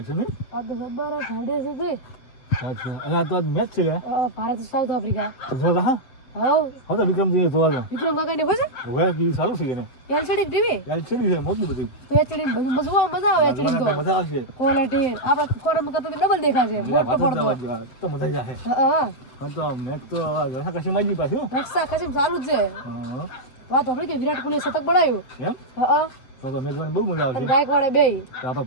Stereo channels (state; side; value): late; right; 8.0 ms